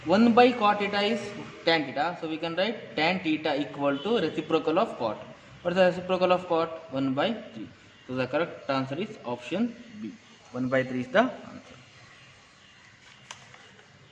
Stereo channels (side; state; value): both; identical; correlation 1.00